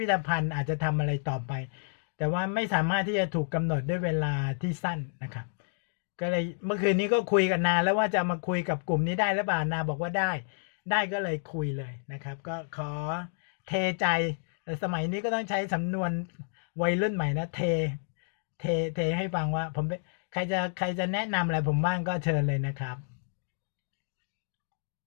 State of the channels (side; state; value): right; silent; digital silence